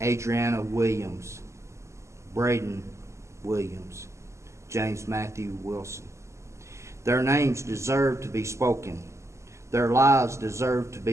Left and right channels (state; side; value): late; left; 0.14 ms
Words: Adriana Williams, Braden Williams, James Matthew Wilson. Their names deserve to be spoken. Their lives deserve to